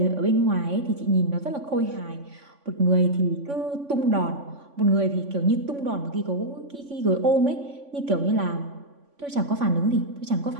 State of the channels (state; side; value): late; left; 3.5 ms